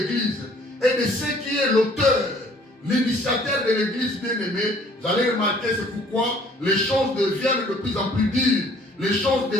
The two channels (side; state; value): both; normal; correlation 0.57